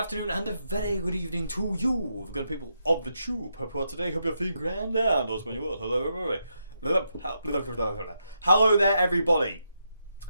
and a very good evening to you, good people of the tube. Hope today, hope you're feeling grand and those when you will. Hello, everybody. Hello there, everybody.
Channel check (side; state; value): both; inverted; correlation -0.82